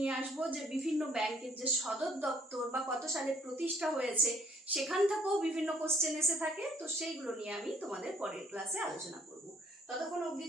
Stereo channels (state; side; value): normal; both; correlation 0.63